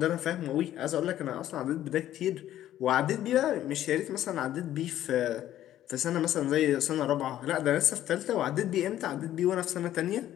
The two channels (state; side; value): quieter; right; 12.5 dB